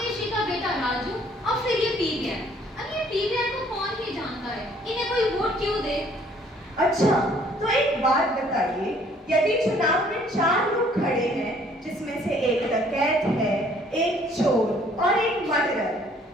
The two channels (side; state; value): both; normal; correlation 0.60